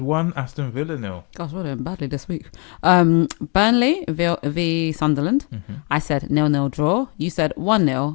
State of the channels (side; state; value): right; quieter; 35.1 dB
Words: 1, Aston Villa 0. Gosh, we're doing badly this week. Burnley v Sunderland. Mm-hmm. I said 0-0 draw. You said